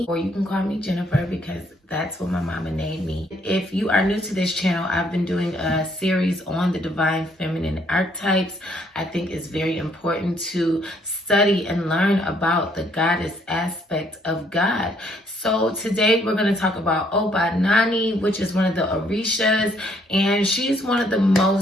or you can call me Jennifer because that's what my mama named me. If you are new to this channel, I've been doing a series on the divine feminine archetypes. I think it's very important to study and learn about the goddess aspect of God. So today we're going to talk about OBA Nani, which is one of the Orishas, and she's one of the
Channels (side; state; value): both; normal; correlation 0.67